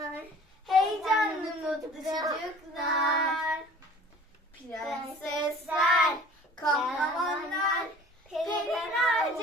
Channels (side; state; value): both; normal; correlation 0.47